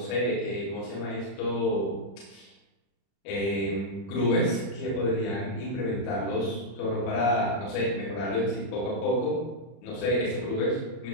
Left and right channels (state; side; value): late; right; 31 ms